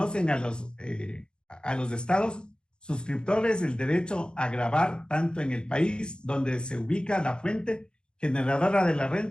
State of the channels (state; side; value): late; right; 0.050 ms